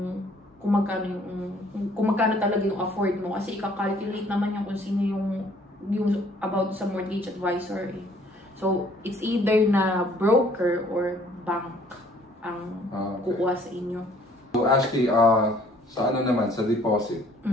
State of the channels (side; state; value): both; normal; correlation 0.59